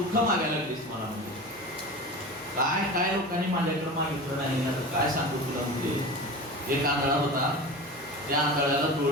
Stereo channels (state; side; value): noise; left; hum, 30 dB below the sound